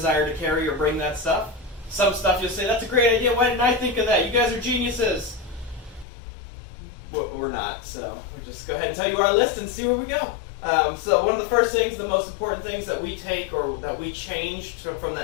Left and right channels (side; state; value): right; drops out; at 6.1 s